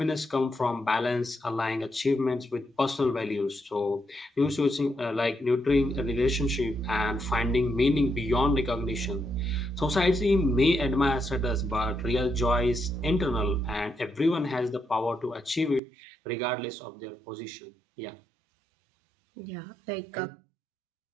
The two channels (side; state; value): left; drops out; at 15.8 s